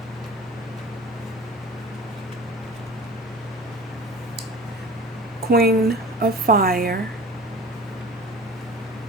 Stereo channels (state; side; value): normal; both; correlation 0.40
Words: Queen of Fire.